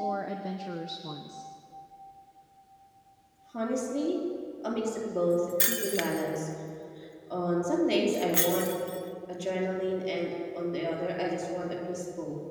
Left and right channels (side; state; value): both; identical; correlation 1.00